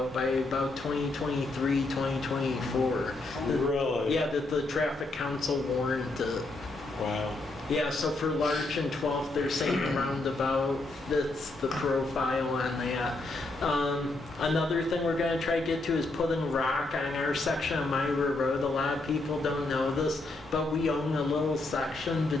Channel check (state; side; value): quieter; right; 3.0 dB